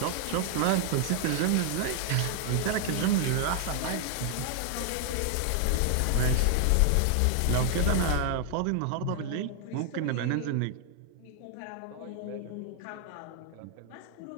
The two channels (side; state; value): both; different; correlation 0.00